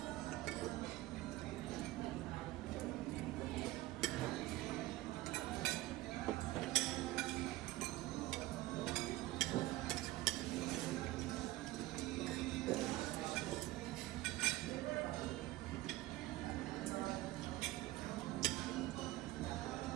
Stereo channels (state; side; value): quieter; left; 17.3 dB